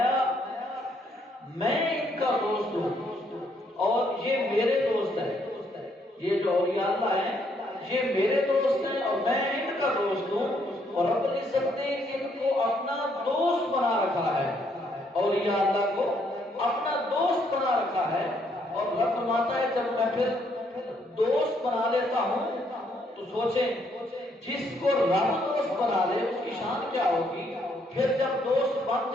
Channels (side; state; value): both; normal; correlation 0.71